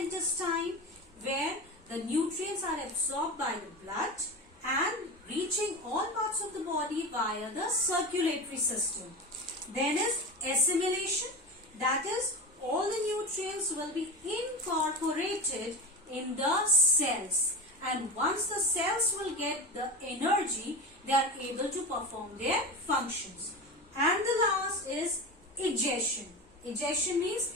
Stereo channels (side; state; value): both; normal; correlation 0.24